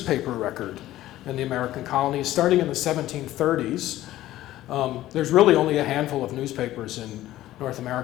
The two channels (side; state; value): right; quieter; 14.7 dB